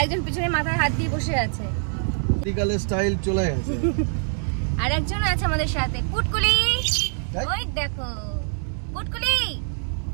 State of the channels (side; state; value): left; silent; 62 dB below the other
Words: একজন পিছনে মাথায় হাত দিয়ে বসে আছে, মেডিকেল স্টাইল চলে গেছে। আর একজন আছে আমাদের সাথে, পুটকুলি। ওই দেখো পুটকুলি,